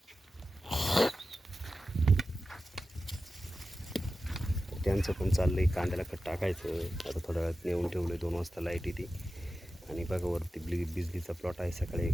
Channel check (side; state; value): both; normal; correlation 0.93